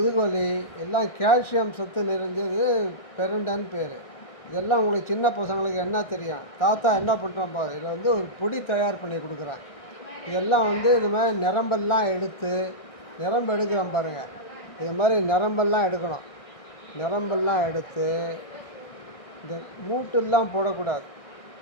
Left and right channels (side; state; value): right; late; 1.6 ms